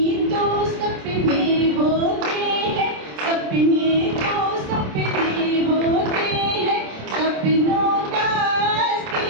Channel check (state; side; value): late; left; 27 ms